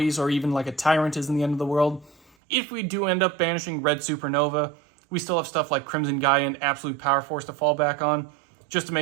or even like a Tyrant isn't the end of the world. If we do end up banishing Red Supernova, we still have stuff like Crimson Gaia and Absolute Power Force to fall back on, just to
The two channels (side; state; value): left; drops out; at 2.3 s